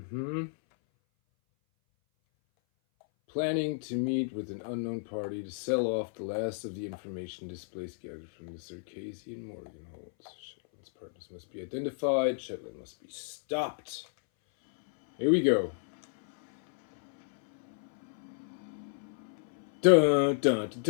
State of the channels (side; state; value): right; silent; 57 dB below the other